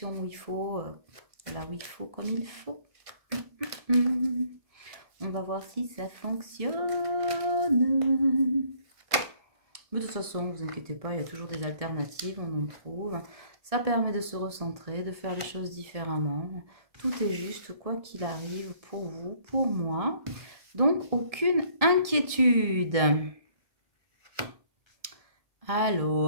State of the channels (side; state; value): left; late; 1.7 ms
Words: où il faut, là où il faut, comme il faut. On va voir si ça fonctionne. Mais de toute façon, ne vous inquiétez pas, il y a toujours des alternatives, on en trouve. Ça permet de se recentrer, de faire les choses différemment. Tout est juste, quoi qu'il arrive, pour vous, pour moi. Donc, aucune inquiétude.